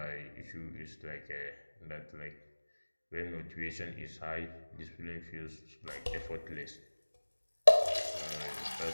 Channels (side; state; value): both; inverted; correlation -1.00